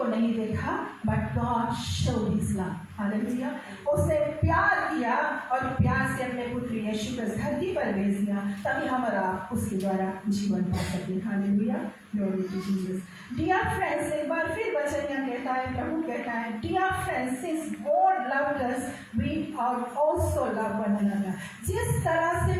नहीं देखा, but God showed his love. Hallelujah. उसने प्यार किया और प्यार से अपने पुत्र यीशु को धरती पर भेज दिया, ताकि हम और आप उसके द्वारा जीवन पा सके। Hallelujah. Glory to Jesus. Dear friends, एक बार फिर वचन यहाँ कहता है, प्रभु कहता है, dear friends, since God loved us we are also love one another. जिस तरह से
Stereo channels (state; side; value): identical; both; correlation 1.00